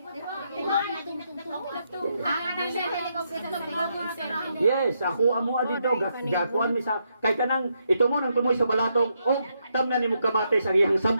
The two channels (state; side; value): inverted; both; correlation -0.79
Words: Yes, ako amo dito gakuan mi sa kay kanang ito mo nang tumoy sa balatong og tamnan nimo kamate sa iyang